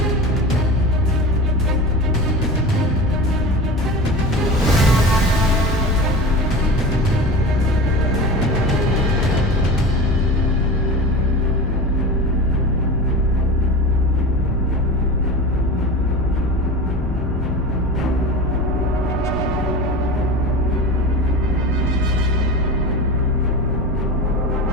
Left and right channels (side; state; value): both; normal; correlation 0.30